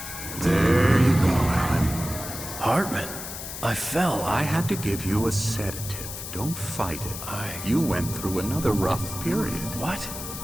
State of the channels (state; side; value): noise; left; hiss, 9 dB below the sound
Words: There you go, Alan. Hartman. I fell. I had to give you a sedative. Don't fight it. You went through another rough period. What?